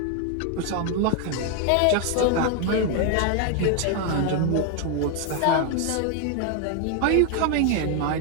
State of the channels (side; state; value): both; different; correlation 0.01